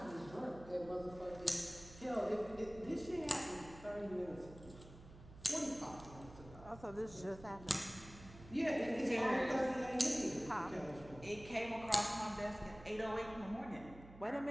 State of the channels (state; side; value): noise; right; hum, 18 dB below the sound